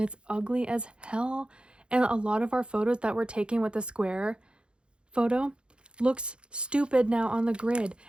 it's ugly as hell. And a lot of our photos that we're taking with the square photo looks stupid now on the grid.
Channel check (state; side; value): late; left; 0.055 ms